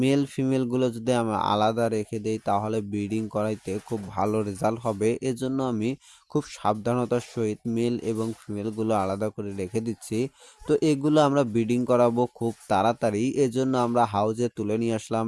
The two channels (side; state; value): both; identical; correlation 1.00